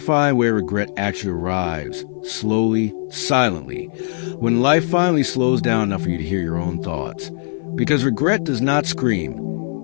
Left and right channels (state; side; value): silent; right; 56 dB below the other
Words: way regret actually arrives, slowly, silently, when life finally slows down enough for you to hear your own thoughts. Because regret does not scream.